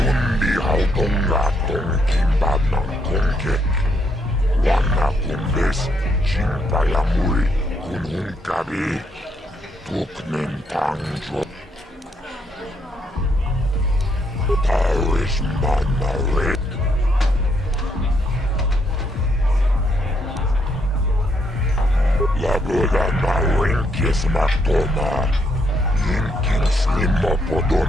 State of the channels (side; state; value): both; normal; correlation 0.74